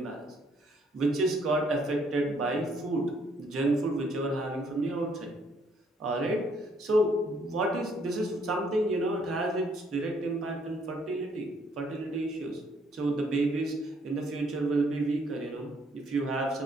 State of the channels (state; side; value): normal; both; correlation 0.67